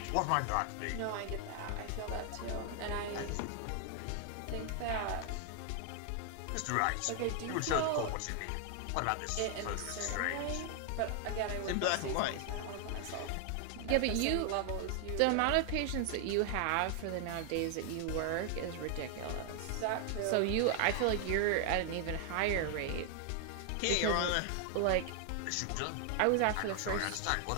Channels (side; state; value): both; different; correlation 0.00